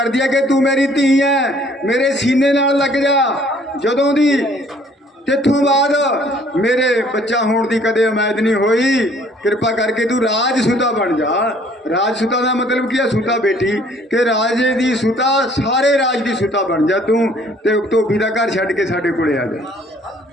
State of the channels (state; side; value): normal; both; correlation 0.59